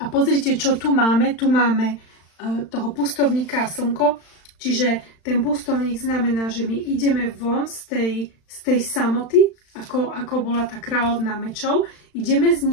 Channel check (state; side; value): late; right; 35 ms